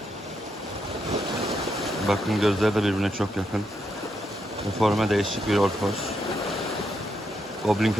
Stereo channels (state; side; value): normal; both; correlation 0.80